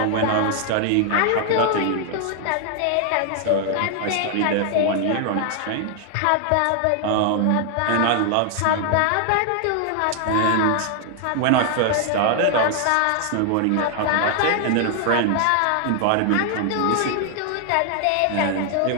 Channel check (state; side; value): different; both; correlation 0.00